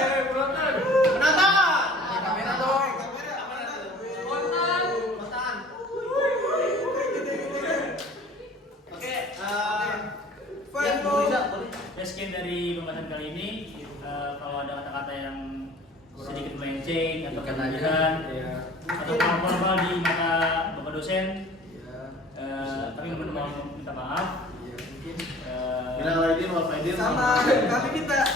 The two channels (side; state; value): both; normal; correlation 0.48